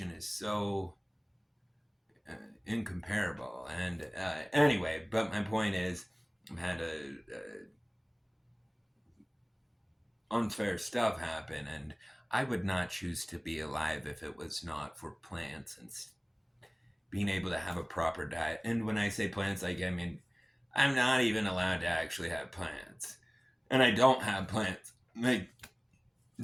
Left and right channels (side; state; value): both; identical; correlation 1.00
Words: is so incomparable. And anyway, but my point is, I've had a unfair stuff happen, and I would not choose to be alive if it was not for plants and being able to have a proper diet. And when I say plants, like I mean, I'm not even allowed to actually have plants, and I don't have plants. Like